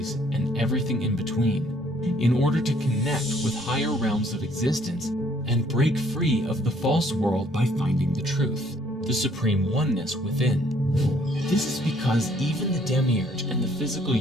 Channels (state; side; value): normal; both; correlation 0.63